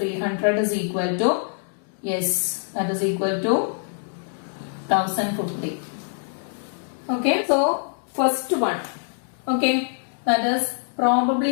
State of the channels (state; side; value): silent; right; digital silence